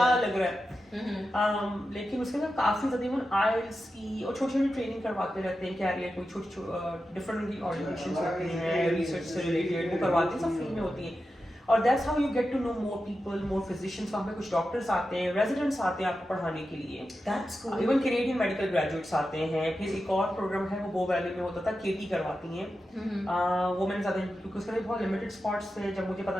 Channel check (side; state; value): both; normal; correlation 0.91